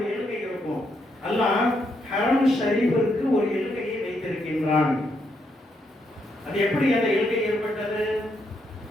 எல்கை இருக்கும். அல்லாஹ் ஹரம் ஷரீஃபிற்கு ஒரு எல்கையை வைத்திருக்கின்றான். அது எப்படி அந்த எல்கை ஏற்பட்டது?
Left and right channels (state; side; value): normal; both; correlation 0.77